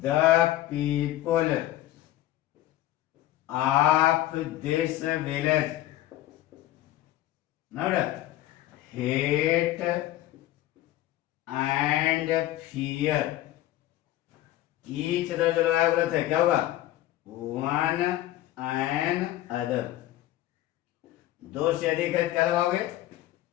The people of this village hate and fear each other. जो लगाया गलत है, क्या होगा? One and other. दो से अधिक है, क्या लगाओगे?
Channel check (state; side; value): quieter; right; 14.7 dB